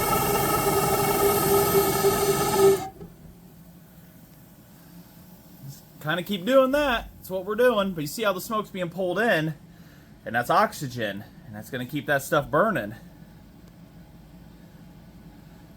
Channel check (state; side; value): identical; both; correlation 1.00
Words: Kind of keep doing that. That's what we're doing. But you see how the smoke's being pulled in, and that's oxygen, and that's going to keep that stuff burning.